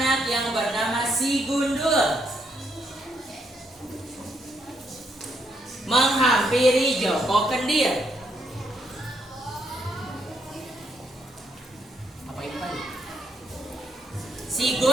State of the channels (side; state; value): both; normal; correlation 0.76